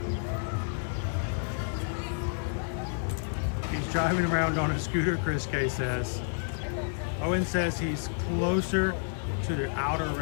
He's driving around on a scooter, Chris K says. Owen says he's closer to the outer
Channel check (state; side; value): silent; right; digital silence